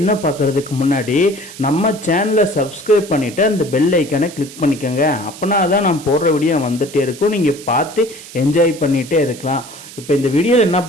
பார்க்குறதுக்கு முன்னாடி நம்ம சேனலை சப்ஸ்கிரைப் பண்ணிவிட்டு அந்த பெல் ஐக்கானை கிளிக் பண்ணிக்கோங்க. அப்போனா தான் நான் போடுற வீடியோ வந்துகிட்டே இருக்கும், நீங்கள் பார்த்து என்ஜாய் பண்ணிகிட்டே இருக்கலாம். இப்போ இந்த வீடியோவில் என்ன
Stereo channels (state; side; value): noise; right; hiss, 16 dB below the sound